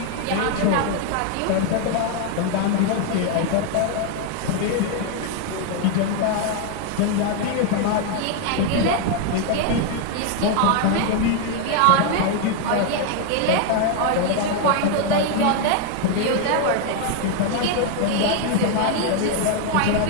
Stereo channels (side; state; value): both; different; correlation 0.00